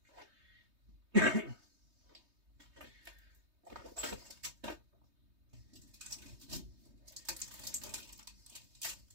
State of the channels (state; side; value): late; left; 3.2 ms